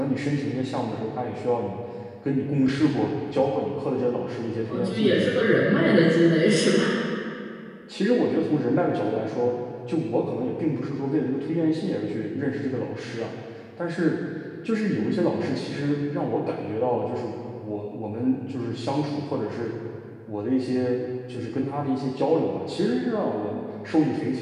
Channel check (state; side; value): identical; both; correlation 1.00